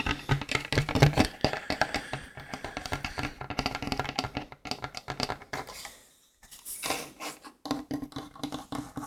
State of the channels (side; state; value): both; identical; correlation 1.00